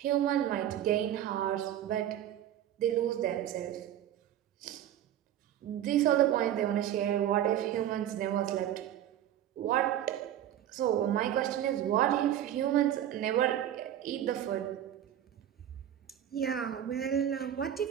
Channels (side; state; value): left; quieter; 11.2 dB